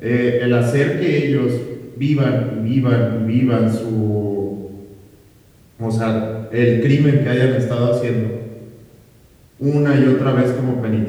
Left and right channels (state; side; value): identical; both; correlation 1.00